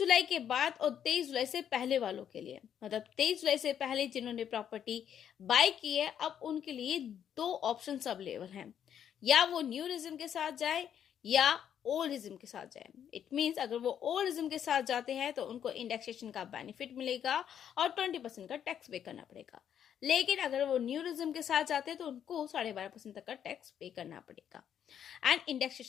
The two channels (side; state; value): right; quieter; 9.2 dB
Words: के बाद और 23 जुलाई से पहले वालों के लिए। मतलब 23 जुलाई से पहले जिन्होंने प्रॉपर्टी बाय की है, अब उनके लिए दो ऑप्शन अवेलेबल हैं। या वो न्यू रिज्म के साथ जाए या ओल्ड रिज्म के साथ जाए। इट मीन्स अगर वो ओल्ड रिज्म के साथ जाते हैं तो उनको इंडेक्सेशन का बेनिफिट मिलेगा और 20% का टैक्स पे करना पड़ेगा। लेकिन अगर वो न्यू रिज्म के साथ जाते हैं तो उनको 12.5% तक का टैक्स पे करना पड़ेगा एंड